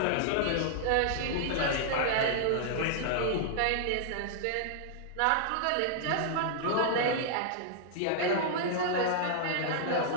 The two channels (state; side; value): different; both; correlation -0.01